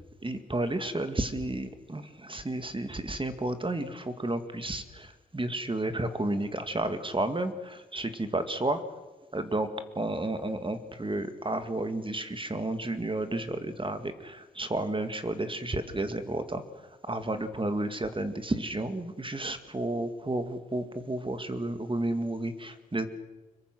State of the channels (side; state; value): both; normal; correlation 0.69